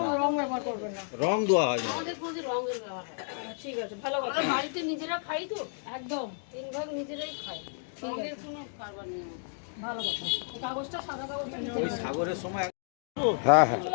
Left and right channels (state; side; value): silent; right; 57 dB below the other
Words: রং ব্যবহার করবেন না। রং দেওয়া হয় না। আমাদের কোনো রঙের ব্যবহার হয় না। ঠিক আছে, ভালো কথা, আমরা বাড়িতে নিজেরা খাই তো একদম 3 ভাগ নিজেরাই খাই, রঙের কোনো কারবার নেই আমাদের। ভালো কথা। এই কাগজটা, সাদা কাগজটা নিচে ওই রাখবেন। সাগরের সময় হ্যাঁ হ্যাঁ